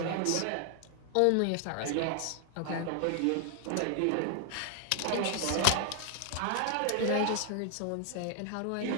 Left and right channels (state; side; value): different; both; correlation 0.00